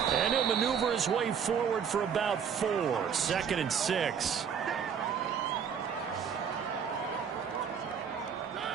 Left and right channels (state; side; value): quieter; left; 7.3 dB